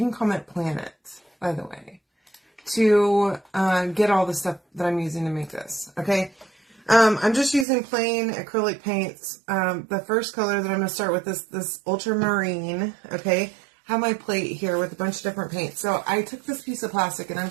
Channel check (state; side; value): drops out; left; at 7.7 s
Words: call it planet, by the way, to get all the stuff that I'm using to make this. Okay, I'm just using plain acrylic paints. The first color that I'm going to start with is this ultramarine. Okay. Have my plate here with a bunch of different paints. So I took this piece of plastic and I'm